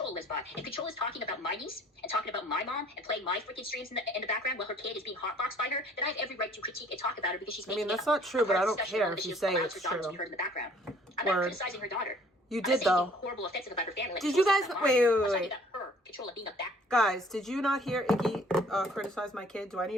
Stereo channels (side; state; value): both; normal; correlation 0.56